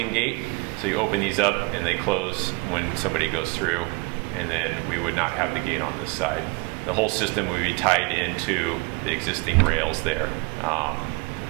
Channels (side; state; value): left; quieter; 27.7 dB